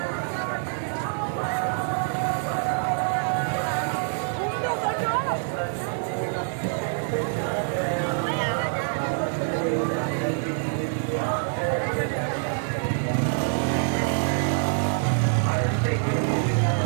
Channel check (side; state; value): left; silent; 61 dB below the other